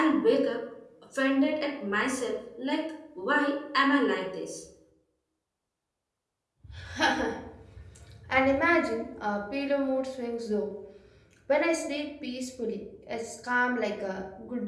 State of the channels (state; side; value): identical; both; correlation 1.00